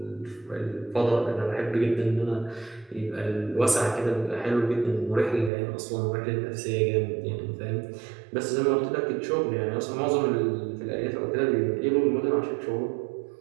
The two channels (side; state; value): left; drops out; at 5.5 s